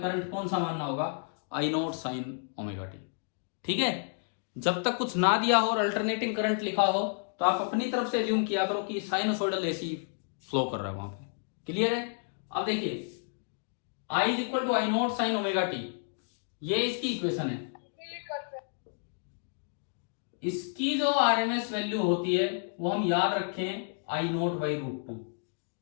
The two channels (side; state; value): right; silent; digital silence